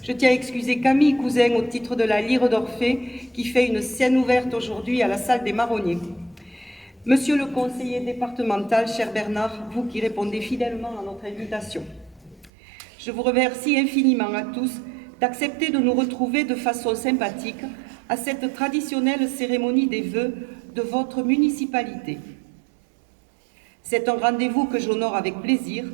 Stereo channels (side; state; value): left; drops out; at 12.5 s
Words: je tiens à excuser Camille Cousin au titre de la Lyre d'Orphée qui fait une scène ouverte aujourd'hui à la salle des Marronniers. Monsieur le conseiller départemental, cher Bernard, vous qui répondez fidèlement à notre invitation, je vous remercie infiniment à tous d'accepter de nous retrouver de façon sympathique à cette traditionnelle cérémonie des vœux de votre municipalité. C'est un rendez-vous que j'honore avec plaisir,